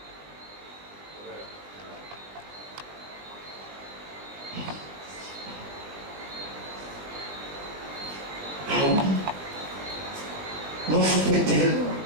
Ah oui. Mon souffle tellement.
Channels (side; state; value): left; late; 20 ms